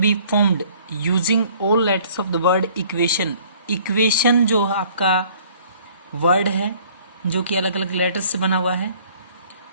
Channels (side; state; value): both; inverted; correlation -0.56